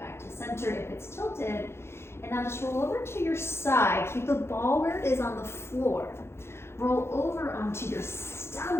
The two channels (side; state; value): right; late; 0.12 ms